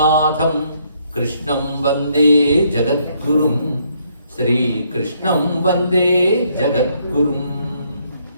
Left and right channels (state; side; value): inverted; both; correlation -0.70